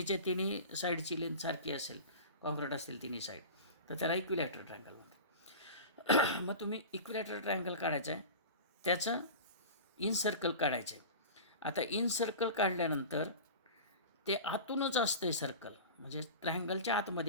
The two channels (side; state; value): both; inverted; correlation -0.32